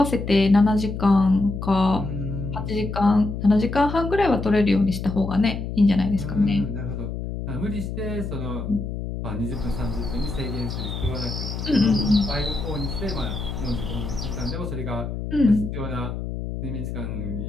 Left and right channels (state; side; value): noise; left; hum, 5 dB below the sound